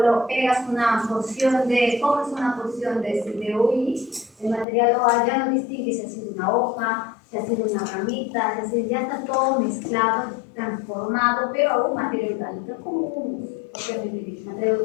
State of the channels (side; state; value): right; drops out; at 4.7 s